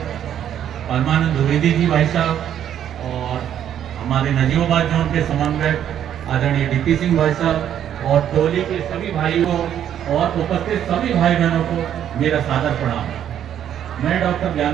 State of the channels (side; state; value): left; quieter; 10.0 dB